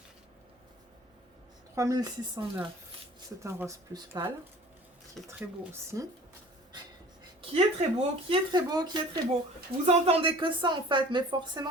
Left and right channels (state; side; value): normal; both; correlation 0.45